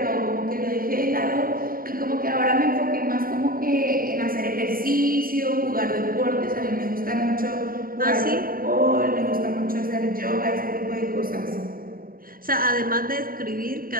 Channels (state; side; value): late; left; 0.42 ms